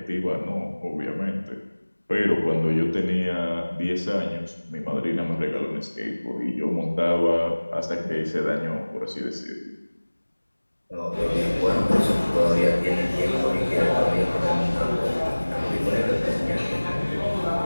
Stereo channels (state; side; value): inverted; both; correlation -1.00